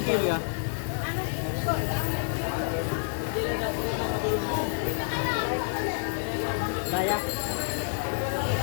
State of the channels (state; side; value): silent; right; 59 dB below the other